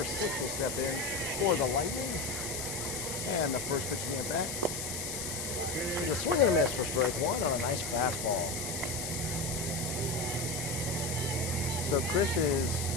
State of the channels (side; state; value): left; noise; hiss, 4 dB below the sound